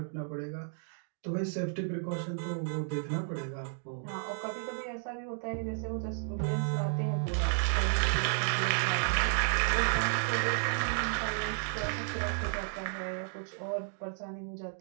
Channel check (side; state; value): left; silent; digital silence